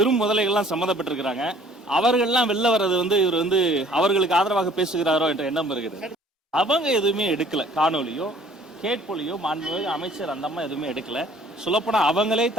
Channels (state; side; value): normal; both; correlation 0.55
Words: முதலைகள்லாம் சம்மந்தப்பட்டிருக்கிறாங்க, அவர்கள்லாம் வெளில வர்றது வந்து இவர் வந்து அவர்களுக்கு ஆதரவாக பேசுகிறாரோ என்ற எண்ணம் இருக்குது. அவங்க எதுவுமே எடுக்கல, காணொலியோ கேட்பொலியோ மாண்புமிகு அமைச்சர் அந்த அம்மா எதுவுமே எடுக்கல. சொல்லப்போனால் அவங்களே